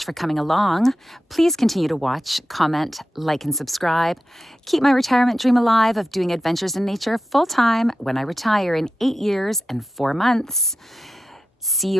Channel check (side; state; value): both; normal; correlation 0.90